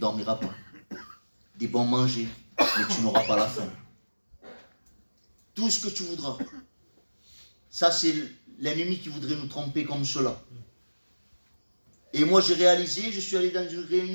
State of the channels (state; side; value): inverted; both; correlation -1.00